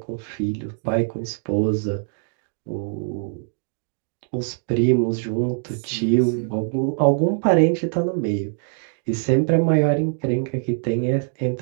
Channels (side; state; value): left; silent; digital silence